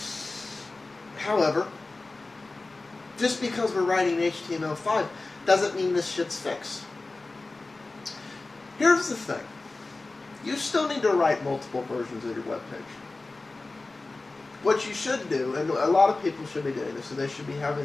However, just because we're writing HTML5 doesn't mean this shit's fixed. Here's the thing. You still need to write multiple versions of your webpage. What you should do, and a lot of people should be doing this, so they should be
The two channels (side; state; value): right; quieter; 3.3 dB